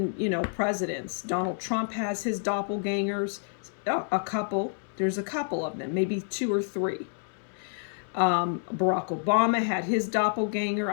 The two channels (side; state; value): right; silent; 59 dB below the other